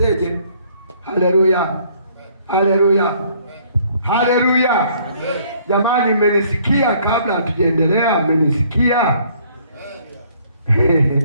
Haleluya, haleluya, haleluya. Jamani, mmenisikia? Kabla hatujaendelea, mmenisikia?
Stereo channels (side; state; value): both; inverted; correlation -0.62